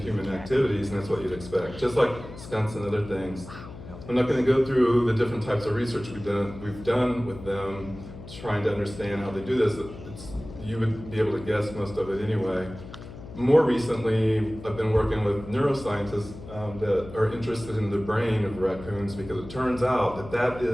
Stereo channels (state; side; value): noise; left; hum, 14 dB below the sound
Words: activities, and that's what you'd expect. Just like skunks and other things. I'm not going to go through the different types of research we've done with them, trying to understand how they do this. You would be able to guess most of it anyway. More recently, I've been working with neuroscientists that are interested in the brain of raccoons because it turns out that